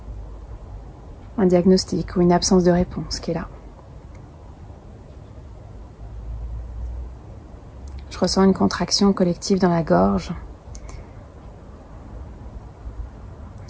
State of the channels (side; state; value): both; identical; correlation 1.00